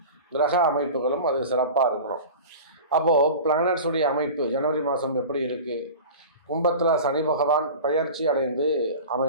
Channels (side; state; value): both; inverted; correlation -0.34